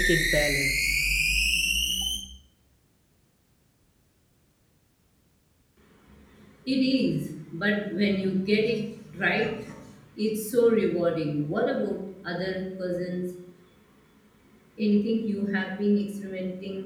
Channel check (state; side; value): identical; both; correlation 1.00